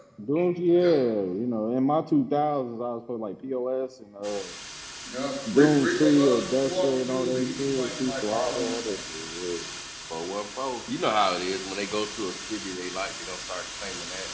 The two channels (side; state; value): both; identical; correlation 1.00